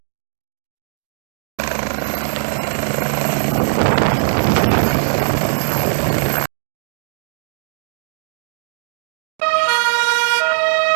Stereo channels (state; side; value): silent; left; digital silence